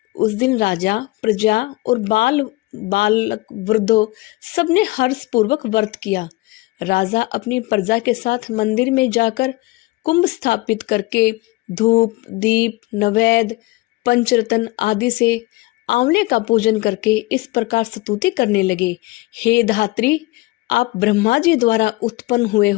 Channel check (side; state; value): right; quieter; 21.1 dB